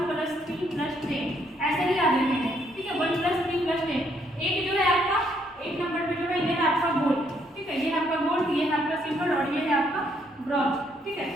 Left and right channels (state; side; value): normal; both; correlation 0.71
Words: ऐसे ही याद रखेंगे, ठीक है। 1+3+10। एक जो है आपका 1 नंबर पे जो है ये है आपका गोल्ड, ठीक है। ये है आपका गोल्ड, ये है आपका सिल्वर और ये है आपका ब्रॉन्ज, ठीक है।